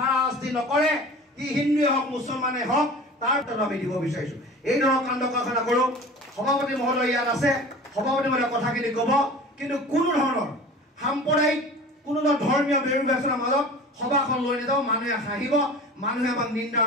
নকৰে ই হিন্দুৱে হওক মুছলমানে হওক তাৰ তথ্য আমি দিব বিচাৰিছোঁ এই ধৰণৰ কাণ্ড কাৰখানা কৰোঁ সভাপতি মহোদয় ইয়াত আছে সভাপতি মহোদয়ে কথাখিনি ক'ব কিন্তু কোনো ধৰণৰ সাম্প্ৰদায়িক কোনো ধৰ্মীয় বিৰোধাচনাৰ মাজত সভাখন লৈ নাযাওঁ মানুহে হাঁহিব মানুহে আমাক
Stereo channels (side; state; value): both; normal; correlation 0.39